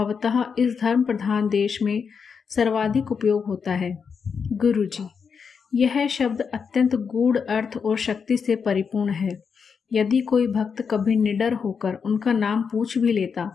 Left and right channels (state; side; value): quieter; right; 6.1 dB